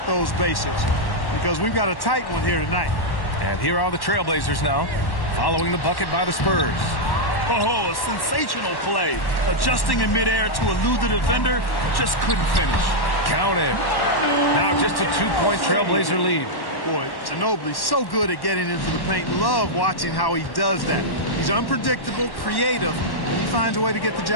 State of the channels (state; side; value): late; right; 1.1 ms